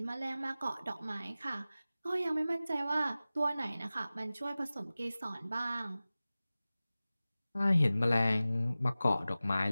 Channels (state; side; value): inverted; both; correlation -0.96